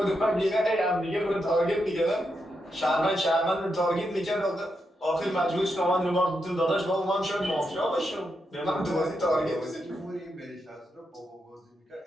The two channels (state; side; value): normal; both; correlation 0.83